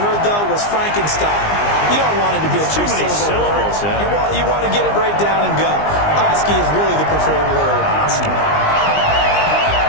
though, was Frankenstein. You don't want it to be a too many syllables. Yeah. You want to get it right down and go. Oski is really the preferred word. Oski.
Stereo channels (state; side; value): late; right; 20 ms